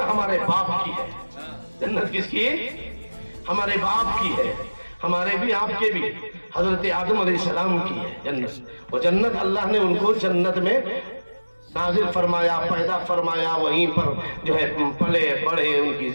ہمارے باپ کی ہے، جنت کس کی؟ ہمارے باپ کی ہے، ہمارے بھی آپ کے بھی، حضرت آدم علیہ السلام کی ہے جنت۔ وہ جنت اللہ نے ان کو جنت میں نازل فرمایا، پیدا فرمایا، وہیں پر جو ہے پلے بڑھے، ان کی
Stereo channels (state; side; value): inverted; both; correlation -1.00